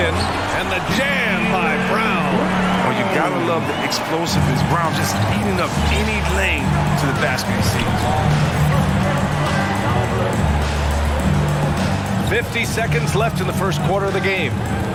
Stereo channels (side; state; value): both; identical; correlation 1.00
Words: And the jam by Brown. Well, you gotta love the explosiveness. Brown just eating up any lane to the basket he sees. 50 seconds left in the first quarter of the game.